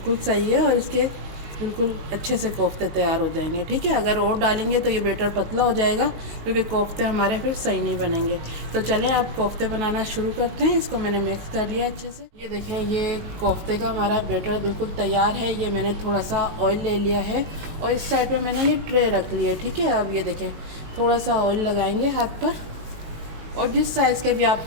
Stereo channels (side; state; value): left; late; 19 ms